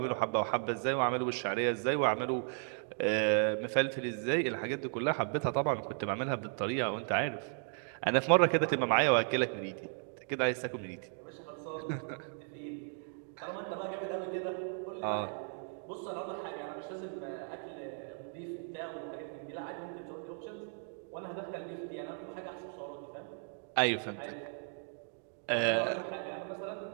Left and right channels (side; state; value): left; silent; 54 dB below the other